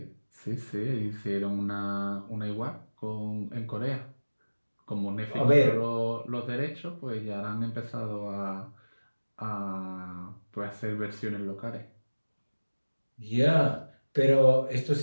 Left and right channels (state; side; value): inverted; both; correlation -1.00